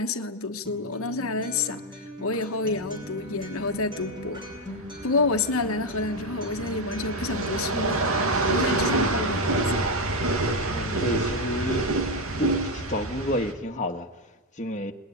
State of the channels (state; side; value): normal; both; correlation 0.06